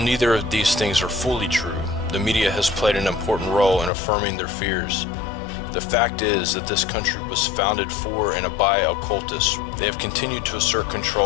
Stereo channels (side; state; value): right; drops out; at 3.9 s